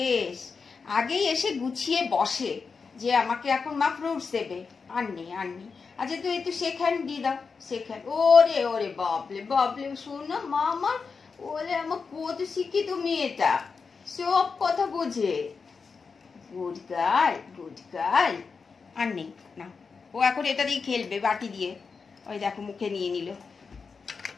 আগেই এসে গুছিয়ে বসে যে আমাকে এখন মা ফ্রুটস দেবে, আননি আননি। আচ্ছা তুই একটু শেখান দিয়ে দাও, শেখান। ওরে ওরে বাবলে বাবলে, শোনো মা আমার, ওরে আমার কত শিক্ষিত মেয়েটা, সব কথা বোঝে। Good girl, good girl. আর নেই না, ও এখন এটা দিয়ে খেলবে বাটি দিয়ে। ওই দেখো মুখে নিয়ে নিল।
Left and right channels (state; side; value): quieter; right; 5.1 dB